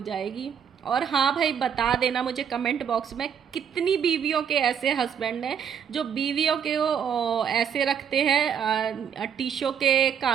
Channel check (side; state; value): left; quieter; 7.8 dB